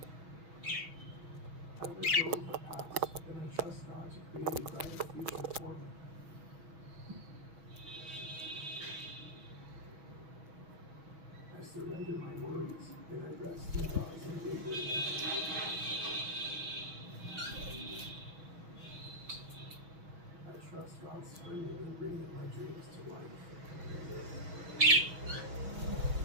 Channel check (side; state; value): left; late; 6.2 ms